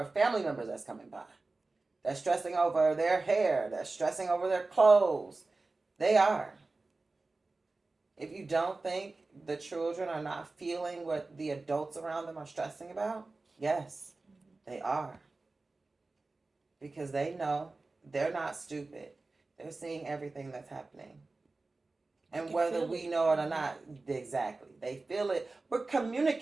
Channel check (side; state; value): left; quieter; 3.5 dB